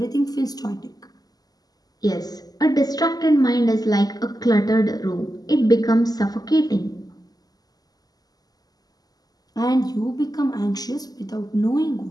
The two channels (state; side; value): late; right; 0.18 ms